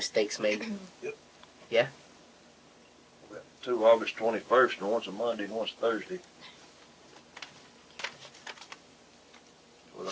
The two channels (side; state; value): both; identical; correlation 1.00